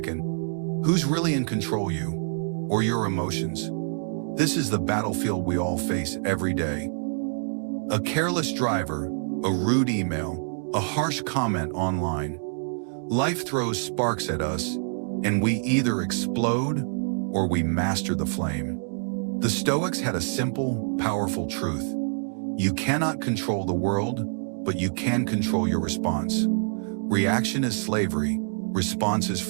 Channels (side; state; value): left; silent; digital silence